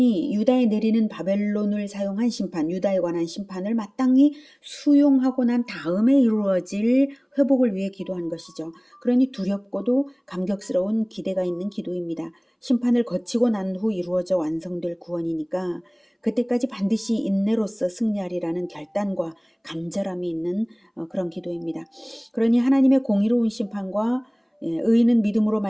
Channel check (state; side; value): identical; both; correlation 1.00